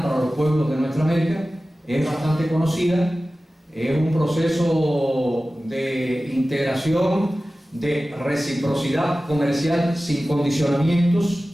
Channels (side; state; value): both; normal; correlation 0.96